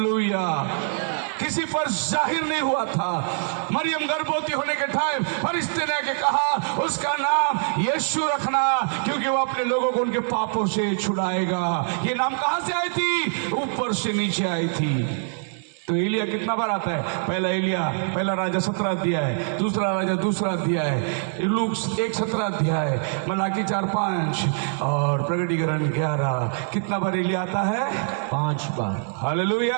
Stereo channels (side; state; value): left; silent; 62 dB below the other